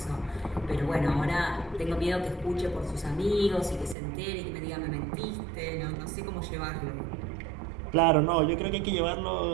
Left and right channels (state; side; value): drops out; left; at 4.0 s